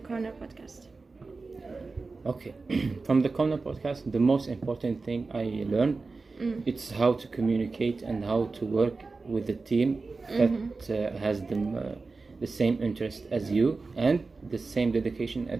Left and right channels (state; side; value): quieter; left; 4.0 dB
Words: Corner podcast? Okay. From the Corner podcast, the most important thing I learned, it's how to communicate and how to work with the team that has the same interest as you and the same dedication